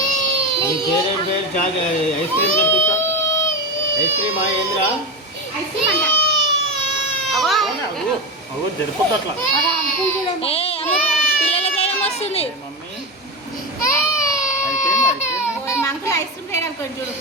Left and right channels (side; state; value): both; normal; correlation 0.18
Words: ఐస్ క్రీమ్ తెప్పిస్తా. ఐస్ క్రీమ్ ఏంద్రా? ఐస్ క్రీమ్ అంట జరిపోద్దు అట్లా. పిల్లల దయ్యం వస్తుంది. అంకుల్ ఐస్ క్రీమ్ తేడా అనుకోండి చూడు.